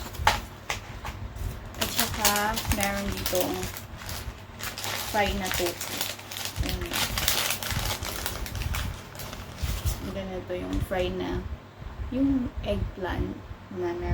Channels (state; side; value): identical; both; correlation 1.00